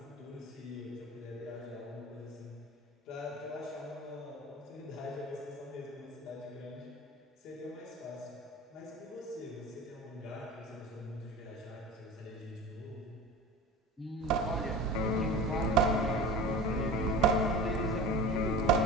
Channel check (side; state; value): both; normal; correlation 0.35